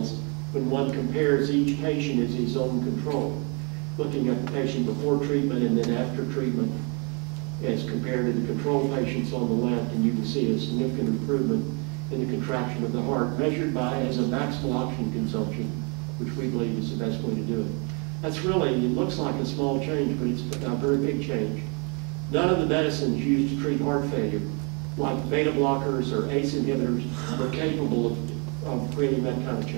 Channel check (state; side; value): quieter; left; 34.1 dB